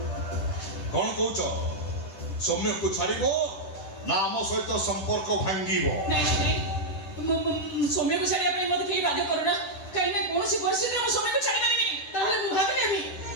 कौन कौच सौम्य को छाड़ ना आम सहित संपर्क भांगी सौम्य को छाड़िया मत कहीं बाध्य करना कहीं ना कौन परिस्थिति में सौम्य को छाड़ी पारिनी ताहले मु भाबिलेबी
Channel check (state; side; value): late; right; 10 ms